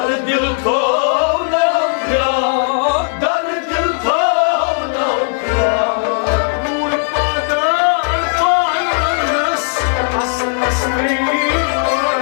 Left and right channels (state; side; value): silent; right; digital silence